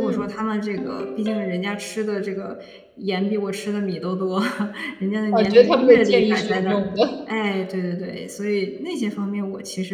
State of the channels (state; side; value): identical; both; correlation 1.00